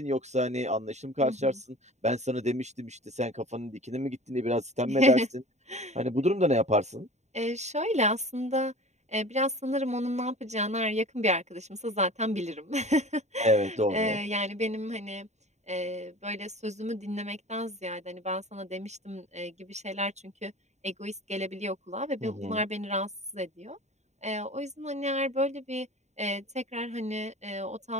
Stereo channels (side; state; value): left; late; 0.33 ms